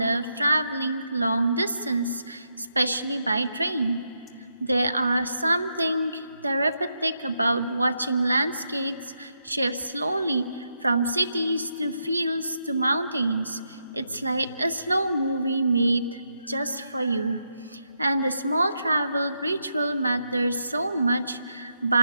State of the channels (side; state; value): both; inverted; correlation -0.82